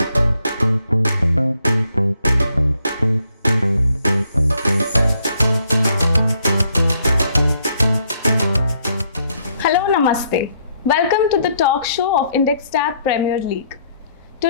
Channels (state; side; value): inverted; both; correlation -0.70